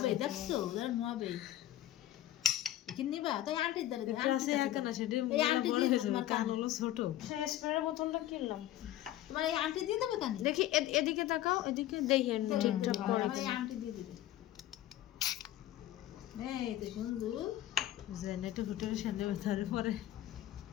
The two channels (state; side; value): quieter; right; 13.7 dB